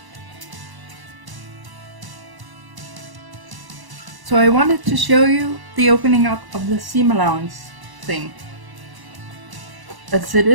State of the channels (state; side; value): late; left; 1.0 ms